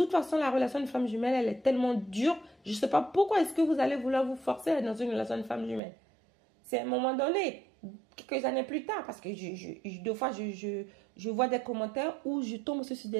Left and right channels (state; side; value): drops out; left; at 5.8 s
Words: façon, la relation de flamme jumelle, elle est tellement dure, je ne sais pas pourquoi est-ce que vous allez vouloir vous forcer à être dans une relation de flamme jumelle. C'est à un moment donné, quelques années plus tard, parce que deux fois, je vois des commentaires où je tombe sur